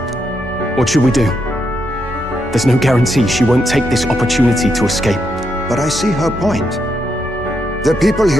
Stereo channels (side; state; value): both; normal; correlation 0.80